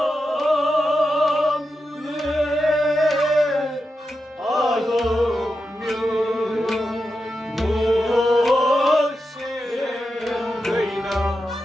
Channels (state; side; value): normal; both; correlation 0.89